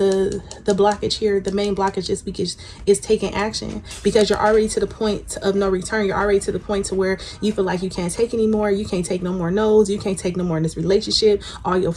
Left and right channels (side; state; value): both; identical; correlation 1.00